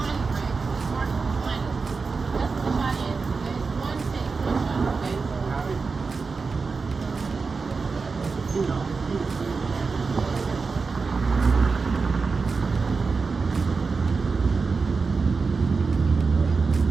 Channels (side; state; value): left; quieter; 4.6 dB